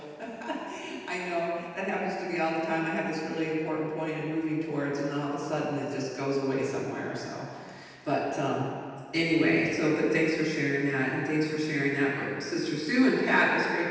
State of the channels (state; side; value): identical; both; correlation 1.00